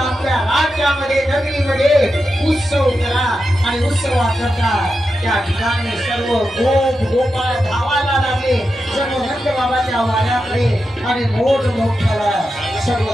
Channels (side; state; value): both; normal; correlation 0.89